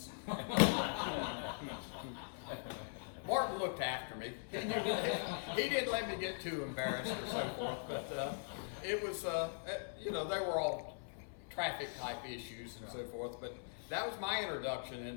Martin looked after me. He didn't let me get too embarrassed or so forth, but it was, they were all traffic type issues and so forth, but that was my introduction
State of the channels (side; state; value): right; silent; 50 dB below the other